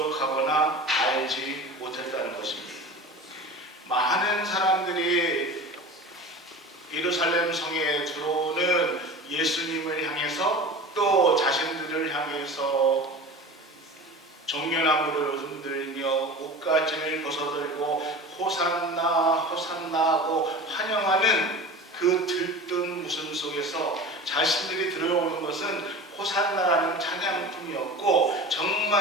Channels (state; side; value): normal; both; correlation 0.35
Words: 알지 못했다는 것입니다. 많은 사람들이 예루살렘 성에 들어오는 예수님을 향해서 또 자신들을 향해서 종려나무를 흔들며 옷가짐을 벗어들고 호산나 호산나 하고 환영하는 그 들뜬 웃음 속에서 자신들이 들어오는 것은 호산나라는 찬양품이었고